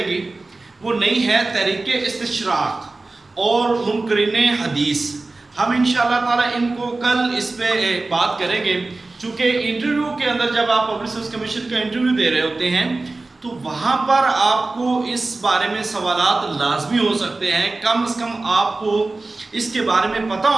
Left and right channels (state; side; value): quieter; left; 3.3 dB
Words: گی وہ نہیں ہے تحریک استشراق اور منکرین حدیث. ہم انشاءاللہ تعالی ان کو کل اس پہ بات کریں گے، چونکہ انٹرویو کے اندر جب آپ پبلک سروس کمیشن کا انٹرویو دے رہے ہوتے ہیں تو وہاں پر آپ کو اس بارے میں سوالات لازمی ہو سکتے ہیں. کم از کم آپ کو اس کے بارے میں پتہ